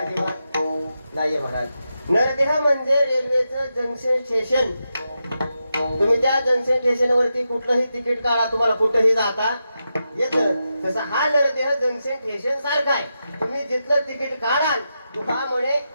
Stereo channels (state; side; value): inverted; both; correlation -0.87